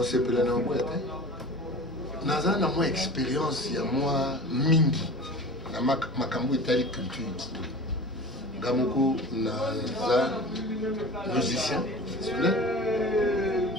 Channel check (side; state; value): both; normal; correlation 0.37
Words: c'est pas la boîte. Naza na moi expérience ya moi mingi na makambo etali culture. Gamoko naza musicien.